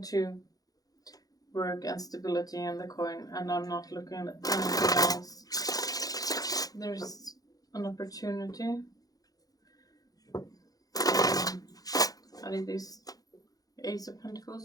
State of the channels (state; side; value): late; right; 0.18 ms